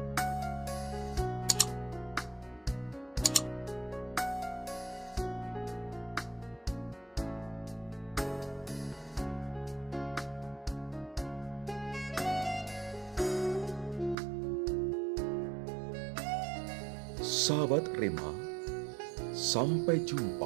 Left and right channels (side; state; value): left; drops out; at 14.2 s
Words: Sahabat Rema, sampai